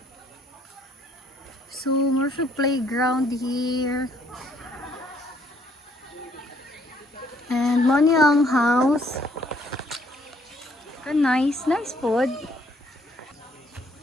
So more siya playground here and mo nilang house. Ka nice food.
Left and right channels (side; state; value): both; normal; correlation 0.65